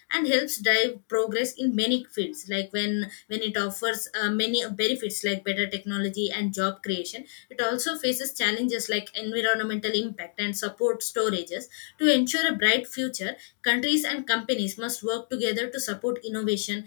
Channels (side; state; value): right; silent; digital silence